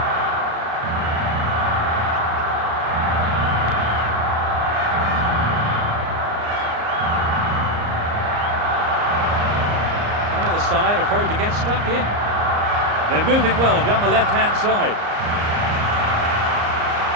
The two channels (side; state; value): left; late; 34 ms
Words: Either side afraid to get stuck in. They're moving well down the left-hand side.